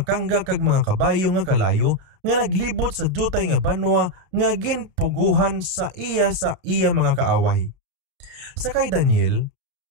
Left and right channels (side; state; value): left; late; 31 ms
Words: kangga kag mga kabayo nga kalayo nga naglibot sa dutay nga banwa nga ginpuguhan sa iya mga kaaway. Sa kay Daniel,